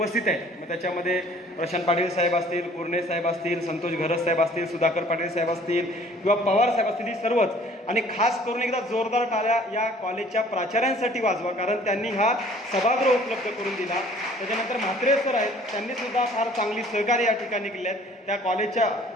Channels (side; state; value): both; normal; correlation 0.54